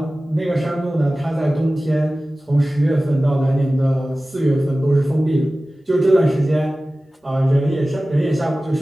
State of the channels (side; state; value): both; normal; correlation 0.96